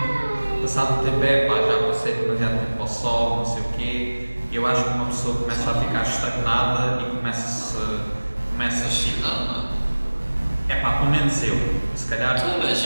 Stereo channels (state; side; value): inverted; both; correlation -1.00